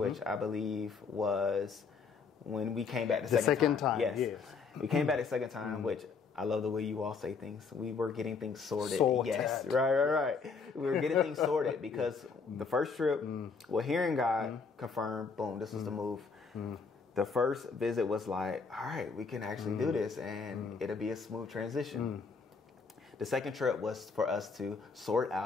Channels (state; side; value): quieter; right; 5.1 dB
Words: I believe was when we came back the second time. Yes. We came back the second time, which I love the way you all say things. We were getting things sorted. Yes, right. We were getting things sorted because the first trip, well, hearing God confirmed, boom, this was the move. The first visit was like, all right, we can actually do this, and it'll be a smooth transition. The second trip was for us to sort